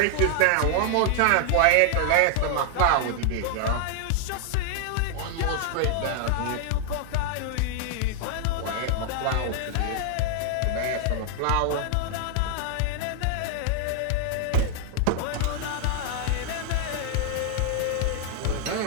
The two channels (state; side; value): different; both; correlation 0.00